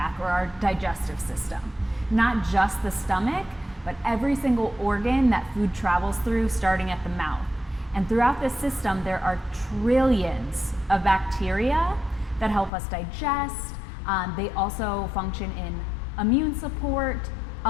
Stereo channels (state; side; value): drops out; right; at 12.7 s